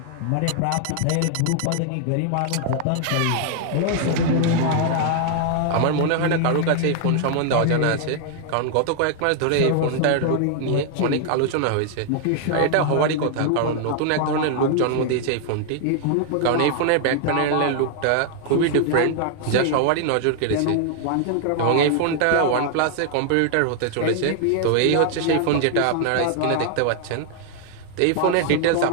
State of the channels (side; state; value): both; different; correlation 0.00